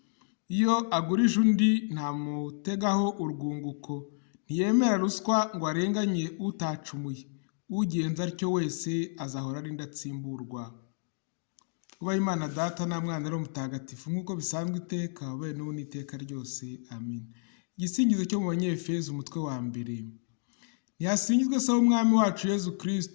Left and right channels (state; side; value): silent; right; digital silence